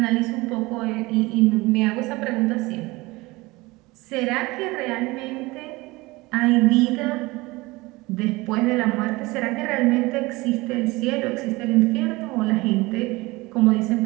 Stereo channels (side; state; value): left; quieter; 21.9 dB